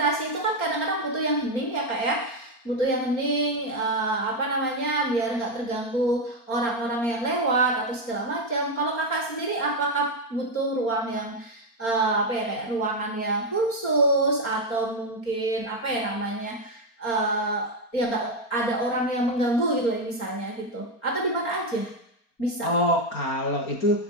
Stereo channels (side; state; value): right; late; 4.3 ms